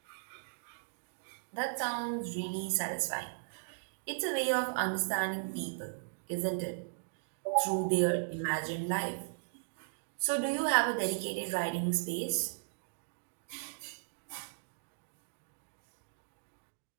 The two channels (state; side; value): silent; left; digital silence